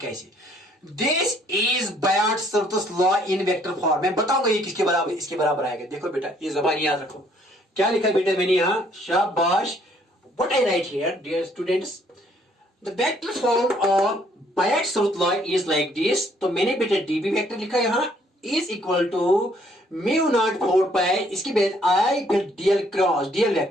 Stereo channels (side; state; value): both; normal; correlation 0.64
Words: this is Biot Savart law in vector form, मैं बताऊंगा ये किसके बराबर, इसके बराबर आएगा। देखो बेटा ये जबान याद रखो, क्या लिखा बेटा मैंने यहां, शाबाश, what I write here dear students, the vector form of Biot Savart law is like this, तो मैंने बेटा डीबी वेक्टर लिखा यहां is equal to mu not 4 pi, इसके बाद आई फिर dl cross, dl